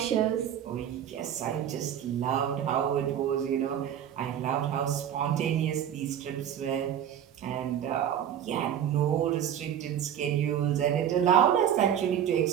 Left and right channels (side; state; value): left; quieter; 9.7 dB